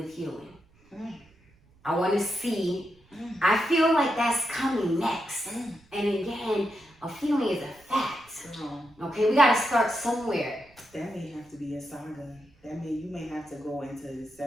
healing. I want to see, I feel like that's coming next. And again, a feeling is a fact. Okay, we gotta start somewhere. That may have to be a saga. that means you may have to go into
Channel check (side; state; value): right; noise; rumble, 30 dB below the sound